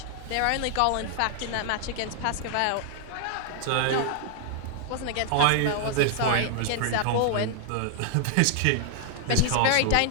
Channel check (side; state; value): both; different; correlation 0.00